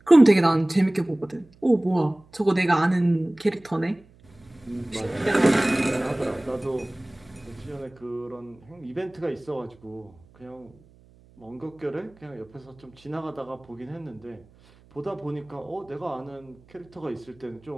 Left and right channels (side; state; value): right; noise; hum, 27 dB below the sound